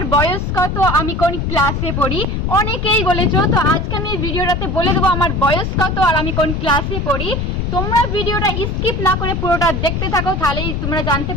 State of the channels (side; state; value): left; noise; rumble, 1 dB below the sound